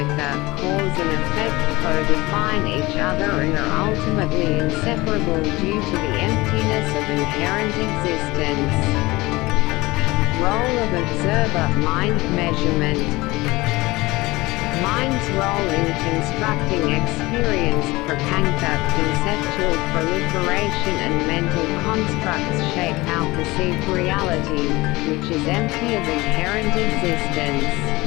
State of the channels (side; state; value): right; quieter; 21.1 dB